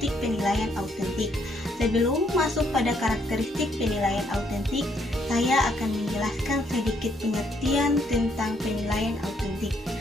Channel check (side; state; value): both; normal; correlation 0.71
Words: penilaian autentik. Sebelum masuk pada karakteristik penilaian autentik, saya akan menjelaskan sedikit pengertian tentang penilaian autentik.